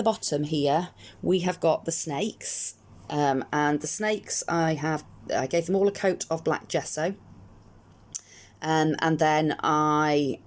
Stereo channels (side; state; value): both; identical; correlation 1.00